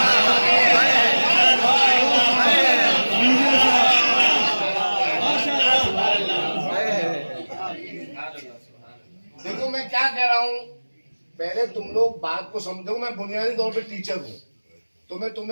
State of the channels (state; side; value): inverted; both; correlation -1.00